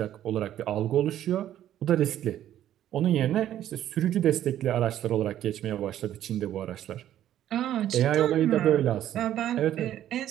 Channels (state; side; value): quieter; left; 11.8 dB